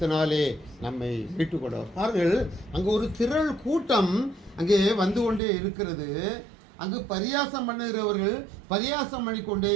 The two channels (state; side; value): drops out; left; at 5.4 s